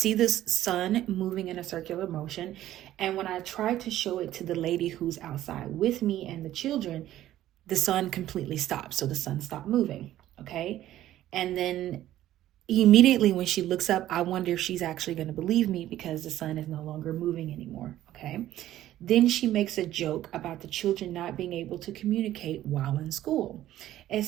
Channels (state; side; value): quieter; left; 13.4 dB